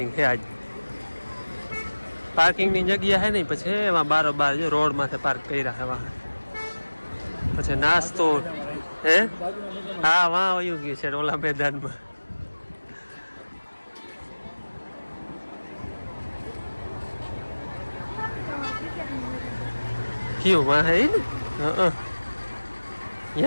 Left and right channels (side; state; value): both; inverted; correlation -1.00